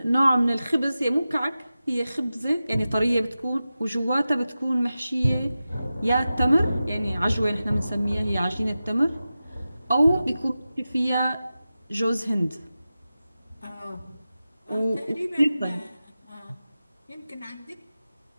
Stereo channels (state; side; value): inverted; both; correlation -0.94